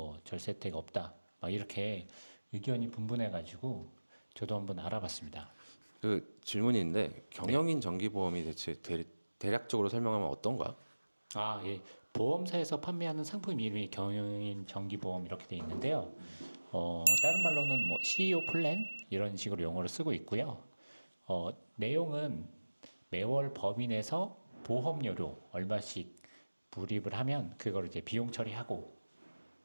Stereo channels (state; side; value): inverted; both; correlation -1.00